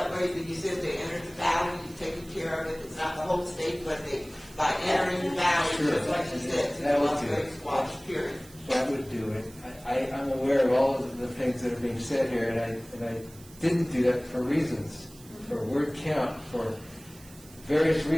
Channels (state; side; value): noise; right; hiss, 21 dB below the sound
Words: way that you said they entered the valley, you're taking care of it, it's not the whole state, but by entering the valley, just like you said, through That the would Las do it. Vegas Wash period. That would do it. I'm aware of all of the things that are being said here, and I didn't do that for reasons, for word count, for various